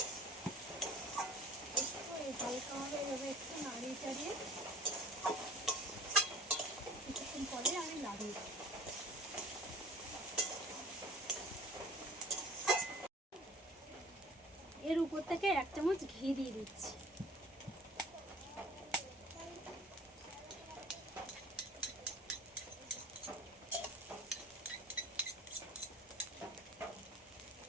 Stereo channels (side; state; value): both; normal; correlation 0.45